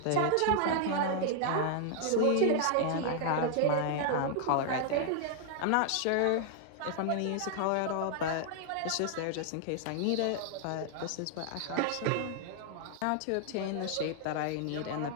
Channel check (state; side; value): different; both; correlation 0.00